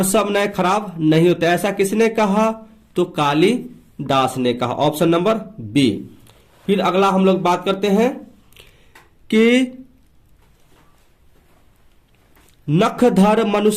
सब नए खराब नहीं होते, ऐसा किसने कहा, तो कालिदास ने कहा। Option number B. फिर अगला हम लोग बात करते हैं कि नखधर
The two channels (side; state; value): both; identical; correlation 1.00